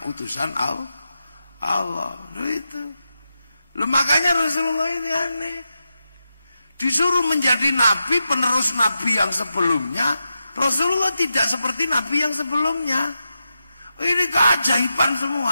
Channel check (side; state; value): both; inverted; correlation -0.89